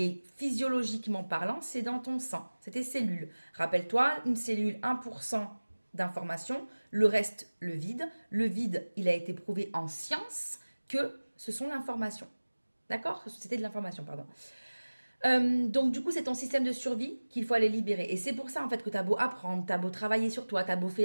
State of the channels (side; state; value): both; inverted; correlation -1.00